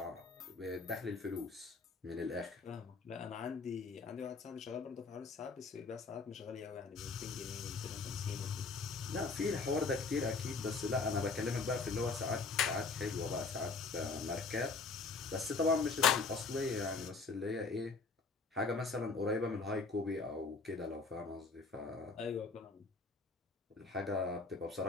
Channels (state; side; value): quieter; right; 4.4 dB